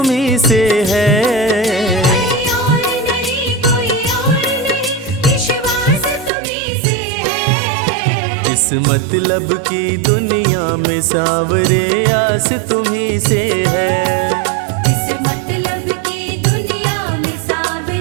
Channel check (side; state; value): left; drops out; at 6.3 s